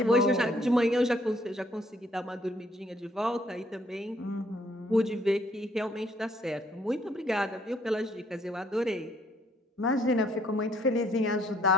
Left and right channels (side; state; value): both; normal; correlation 0.66